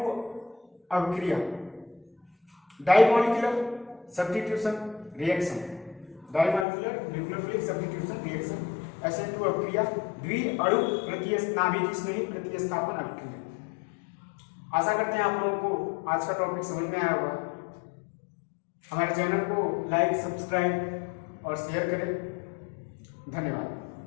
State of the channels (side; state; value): right; drops out; at 6.7 s